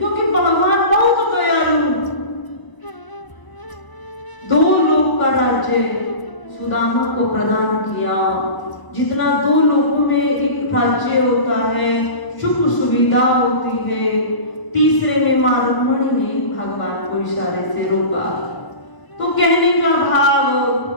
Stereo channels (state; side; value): late; right; 1.0 ms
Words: भगवान बहुत दयालु, 2 लोक का राज्य सुदामा को प्रदान किया। जितना 2 लोकों में एक राज्य होता है, सुख सुविधा होती है, तीसरे में मां रुक्मणी ने भगवान को इशारे से रोका। तो कहने का भाव,